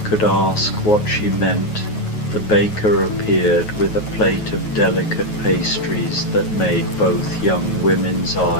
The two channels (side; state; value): right; late; 9.4 ms